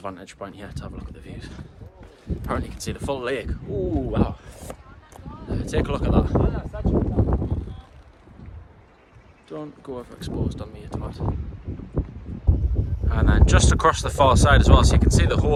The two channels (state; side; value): identical; both; correlation 1.00